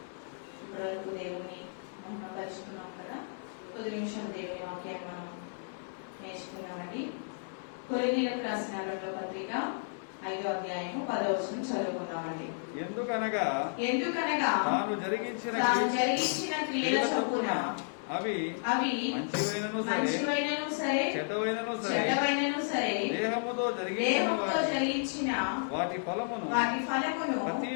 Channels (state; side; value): silent; right; digital silence